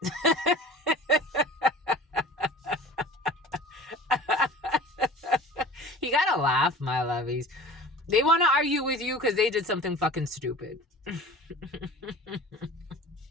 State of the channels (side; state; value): both; normal; correlation 0.40